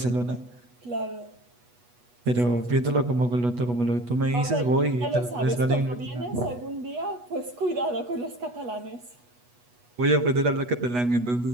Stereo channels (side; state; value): left; late; 8.2 ms